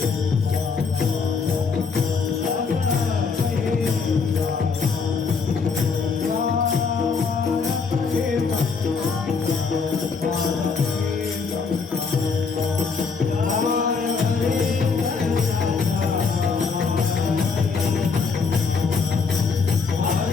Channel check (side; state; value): right; quieter; 5.1 dB